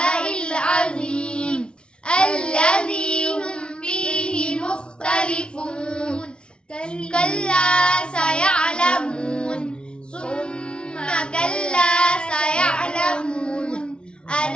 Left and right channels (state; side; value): late; right; 0.055 ms